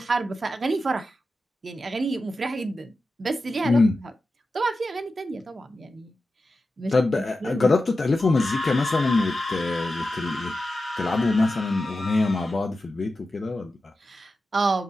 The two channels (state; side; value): normal; both; correlation 0.92